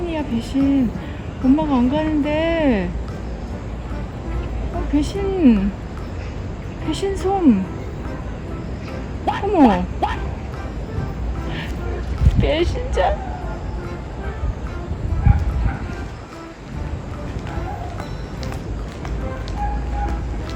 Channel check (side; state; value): both; identical; correlation 1.00